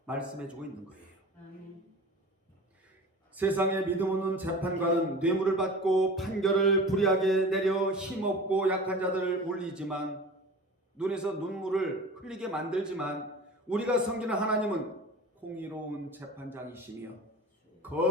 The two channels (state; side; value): normal; both; correlation 0.37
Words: 말씀해주고 있는 거예요. 아멘. 세상에 믿음 없는 재판관은 뇌물을 받고 판결을 불이하게 내려 힘없고 약한 자들을 울리지만, 눈에서 눈물을 흘리게 만들지만, 우리가 섬기는 하나님은 공의로운 재판장이시며